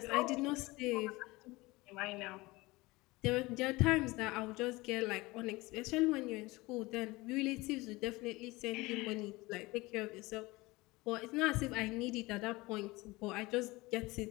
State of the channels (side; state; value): right; quieter; 21.8 dB